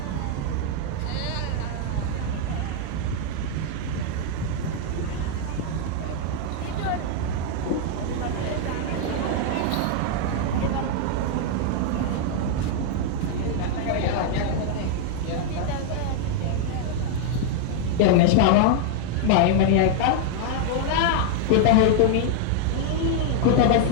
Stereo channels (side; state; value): both; different; correlation 0.00